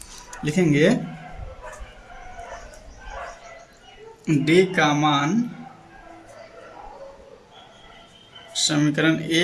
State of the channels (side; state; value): both; identical; correlation 1.00